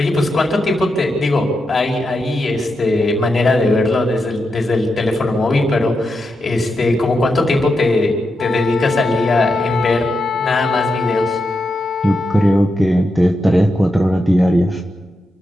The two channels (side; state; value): both; normal; correlation 0.86